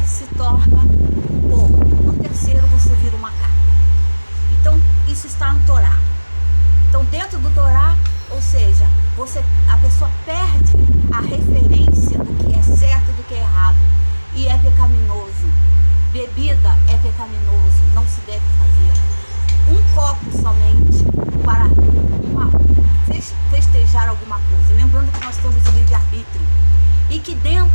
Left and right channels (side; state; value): both; inverted; correlation -1.00